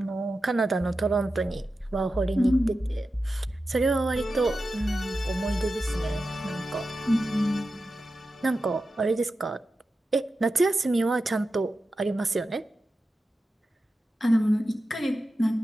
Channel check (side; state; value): both; normal; correlation 0.92